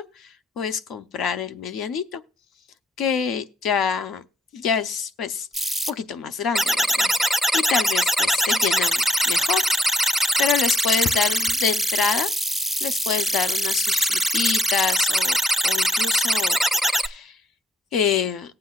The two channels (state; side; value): normal; both; correlation 0.70